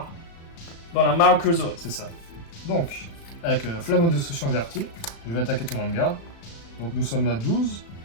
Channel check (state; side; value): late; right; 36 ms